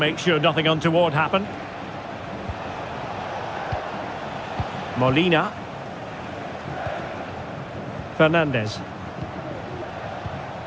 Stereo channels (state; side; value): identical; both; correlation 1.00